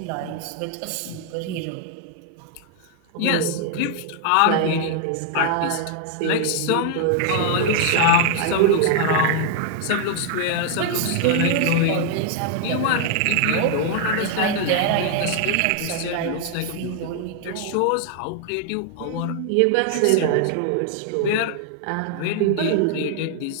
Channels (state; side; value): different; both; correlation 0.00